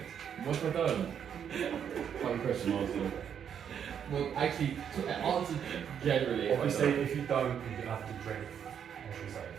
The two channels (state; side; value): quieter; left; 8.3 dB